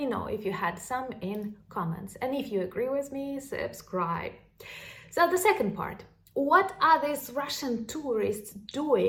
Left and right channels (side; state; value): both; identical; correlation 1.00